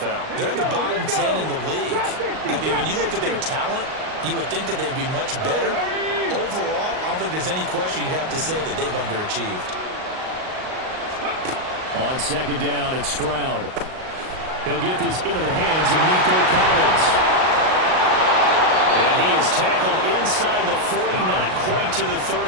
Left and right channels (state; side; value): late; left; 38 ms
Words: They're in the bottom 10 in the league. I mean, when you look at their talent, you would think that they'd be much better. Overall, I don't think there's any question you'd have to say that they've underachieved. On second down, it's Stroud. He'll get this into the hands of Nico Collins. And he is tackled inside the 40, not quite to the